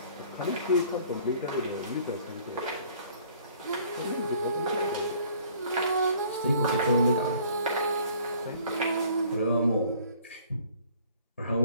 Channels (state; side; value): inverted; both; correlation -0.56